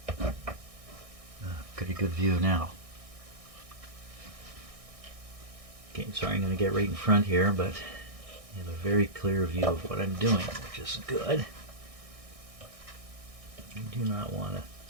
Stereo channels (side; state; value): left; late; 1.6 ms